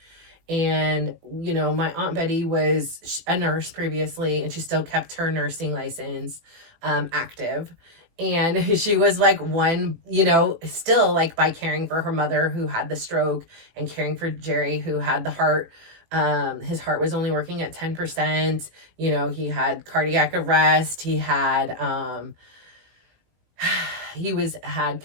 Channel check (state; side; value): late; left; 18 ms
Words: And, you know, my Aunt Betty was a nurse previously, and she still kept her nursing license active. And she was like one, you know, still like by caring for her mother who had the stroke and caring for Geary who had the heart. His heart was only working at 10%. You know, he had cardiac arrest. He had,